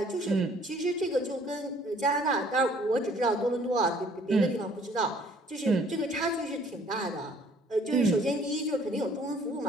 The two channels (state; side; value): normal; both; correlation 0.58